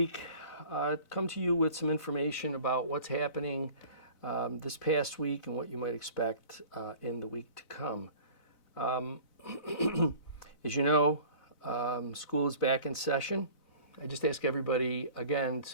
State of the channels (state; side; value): late; right; 4.0 ms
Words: come to you with some information about what's happening this past week and what you might expect in the week to come. As you know, school is back in session. I just ask everybody, again,